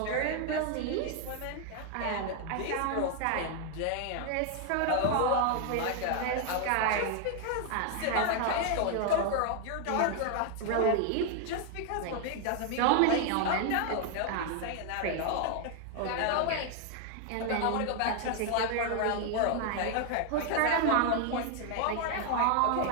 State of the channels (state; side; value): different; both; correlation 0.00